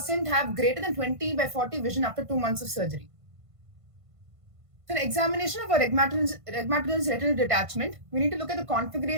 have greater than 20/40 vision after 2 months of surgery. So, an examination of a rhegmatogenous retinal detachment, we need to look at the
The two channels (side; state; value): left; late; 1.5 ms